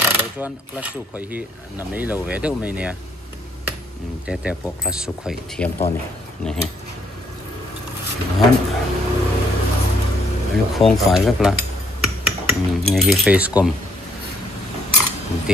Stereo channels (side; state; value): both; normal; correlation 0.67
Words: lo chuan class su khoi hi na mei lo ve deuh mai nia te po class su khoi thiam to ni hi han lu khong fai vek la ni hi face com